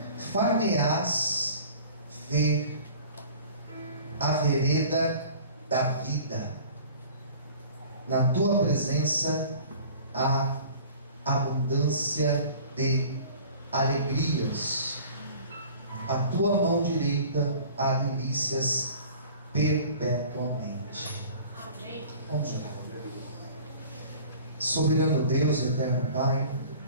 Far-me-ás ver a vereda da vida, na tua presença há abundância de alegrias, a tua mão direita há delícias perpetuamente. Amém. Vamos orar. Soberano Deus, eterno Pai,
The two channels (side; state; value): both; inverted; correlation -0.46